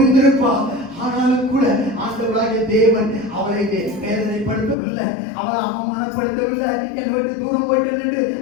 ஆனாலும் கூட ஆண்டவராகிய தேவன் அவளை வேதனைப்படுத்தவில்லை, அவளை அவமானப்படுத்தவில்லை, என்னை விட்டு தூரம் போயிட்டு நின்று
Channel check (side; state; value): right; drops out; at 4.8 s